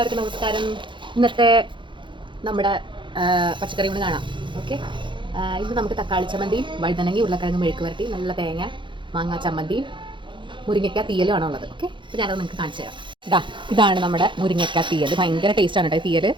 നമസ്കാരം. ഇന്നത്തെ നമ്മുടെ പച്ചക്കറി കൊണ്ട് കാണാം. ഓക്കെ, ഇന്ന് നമുക്ക് തക്കാളി ചമ്മന്തിയും വഴുതനങ്ങി ഉരുളക്കിഴങ്ങ് മെഴുക്ക് വരട്ടി, നല്ല തേങ്ങ മാങ്ങാ ചമ്മന്തിയും മുരിങ്ങയ്ക്ക തീയലും ആണോ ഉള്ളത്. ഓക്കെ, അപ്പോൾ ഞാനത് നിങ്ങൾക്ക് കാണിച്ചു തരാം. ഇതാണ് നമ്മുടെ മുരിങ്ങയ്ക്ക തീയൽ. ഭയങ്കര ടേസ്റ്റാണ് കേട്ടോ തീയൽ.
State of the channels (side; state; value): left; late; 0.23 ms